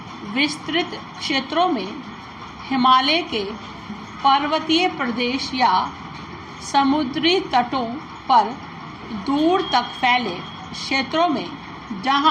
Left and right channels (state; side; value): identical; both; correlation 1.00